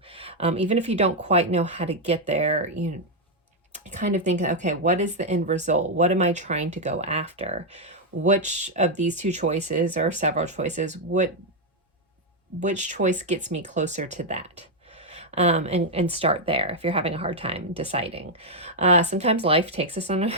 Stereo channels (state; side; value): normal; both; correlation 0.00